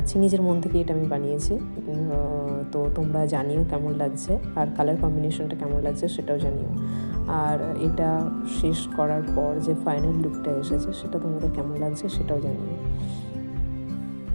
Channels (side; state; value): both; inverted; correlation -1.00